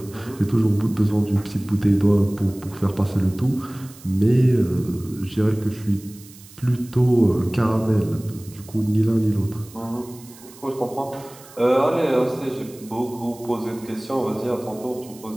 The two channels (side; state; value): right; noise; hiss, 21 dB below the sound